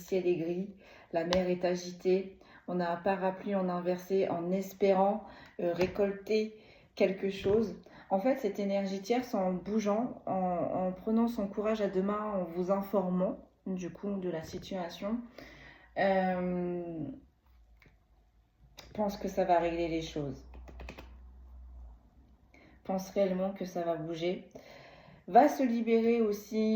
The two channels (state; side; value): identical; both; correlation 1.00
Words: est gris, la mer est agitée, on a un parapluie en inversé en espérant récolter quelque chose. En fait, cette énergie tierce, en bougeant, en prenant son courage à deux mains, en vous informant du coup de la situation, pense que ça va régler les choses. Pense réellement que ça va bouger. Va se libérer